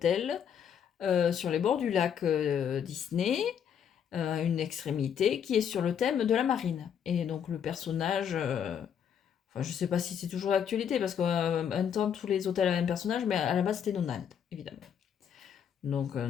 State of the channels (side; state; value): right; quieter; 8.3 dB